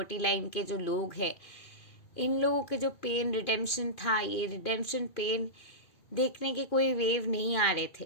लाइन के जो लोग हैं, इन लोगों के जो पेन रिडेम्पशन था, ये रिडेम्पशन पेन देखने के कोई वेव नहीं आ रहे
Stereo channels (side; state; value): right; late; 2.4 ms